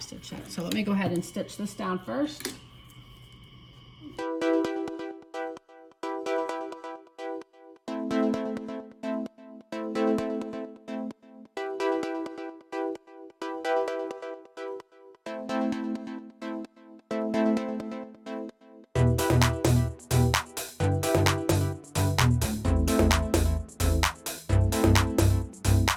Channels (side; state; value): both; identical; correlation 1.00